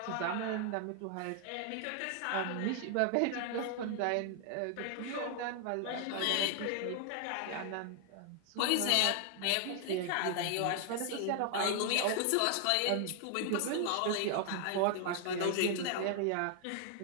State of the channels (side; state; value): both; different; correlation 0.00